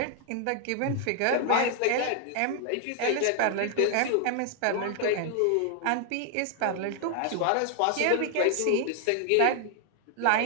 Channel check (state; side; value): different; both; correlation 0.00